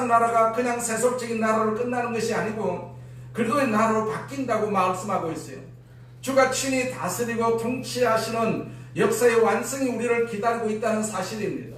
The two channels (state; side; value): identical; both; correlation 1.00